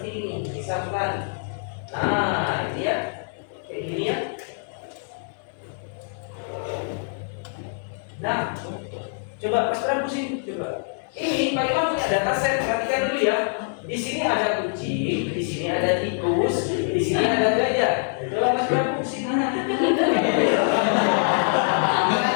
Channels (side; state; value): right; silent; digital silence